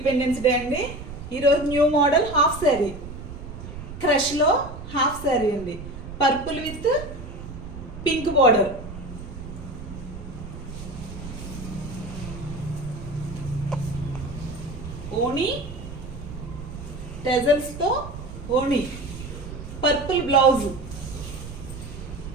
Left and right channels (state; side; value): noise; right; rumble, 11 dB below the sound